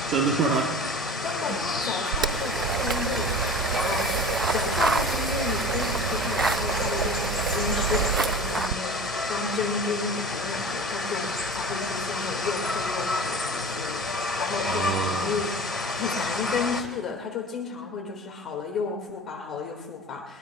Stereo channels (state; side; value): normal; both; correlation 0.38